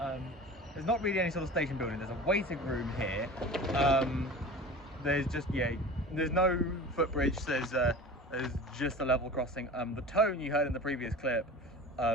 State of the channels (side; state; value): both; normal; correlation 0.36